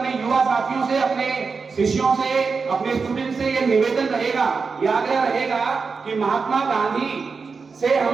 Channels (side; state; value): left; quieter; 4.9 dB